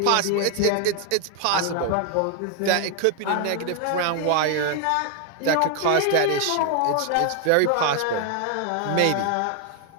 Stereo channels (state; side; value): different; both; correlation 0.00